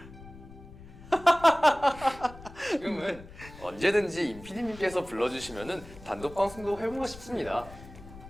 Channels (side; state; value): left; noise; rumble, 17 dB below the sound